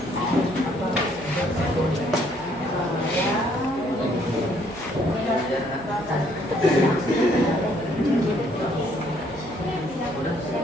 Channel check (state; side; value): noise; right; hum, 22 dB below the sound